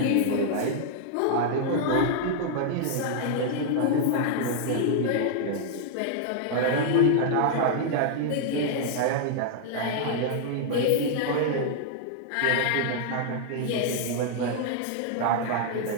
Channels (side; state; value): both; different; correlation -0.01